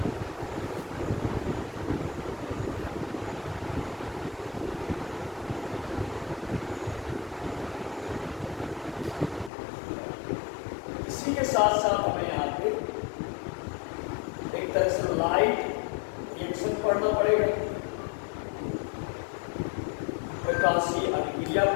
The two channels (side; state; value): right; drops out; at 9.5 s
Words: इसी के साथ साथ हमें यहाँ पे एक तरह से लाइट रिएक्शन पढ़ना पड़ेगा, प्रकाशीय अभिक्रिया